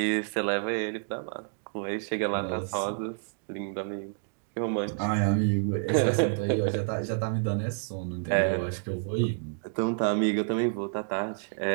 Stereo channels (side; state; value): left; silent; 59 dB below the other